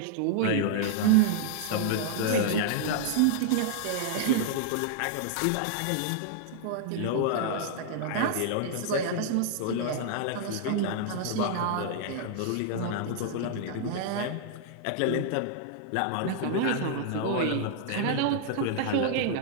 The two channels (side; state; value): both; different; correlation -0.01